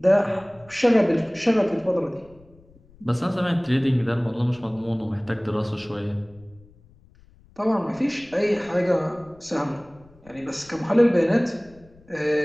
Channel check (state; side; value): noise; left; rumble, 27 dB below the sound